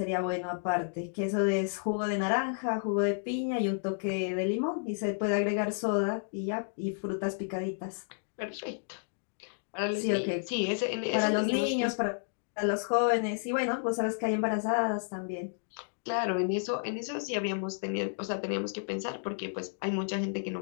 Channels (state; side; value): silent; right; digital silence